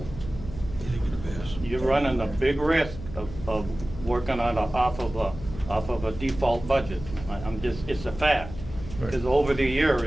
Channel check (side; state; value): left; noise; hum, 12 dB below the sound